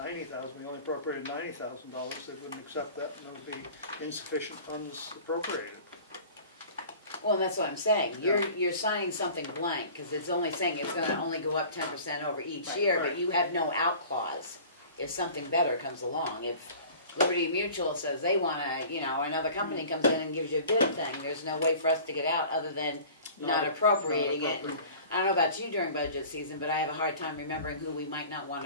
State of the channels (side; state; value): both; inverted; correlation -0.44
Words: we only appropriated $90,000, they wouldn't accept that, and there would be insufficient funds appropriated. Well, and that's what I'm saying, you're signing something blank, because it's only saying it's gonna only go up 10% over each year, but you have no out clause if something better comes along. If Liberty Mutual says they wanna, you know, another company comes in and gives you a bid thing, there's no way for us to get out other than not appropriating it. I don't know about you during budget season, but I have a hard time remembering who we might not want